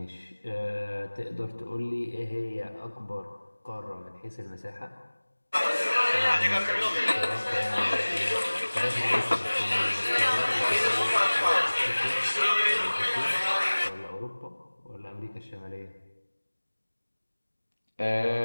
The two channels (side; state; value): both; inverted; correlation -1.00